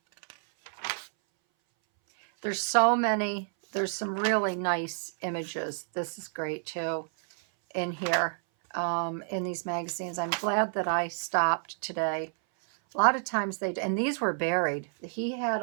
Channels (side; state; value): left; silent; 58 dB below the other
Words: There's so many. There's some really nice images. This is great too in here, in these magazines. I'm glad that I stopped today. A lot of times and these were buried. He had